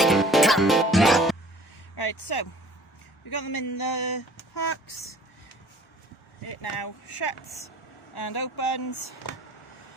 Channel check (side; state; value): both; normal; correlation 0.51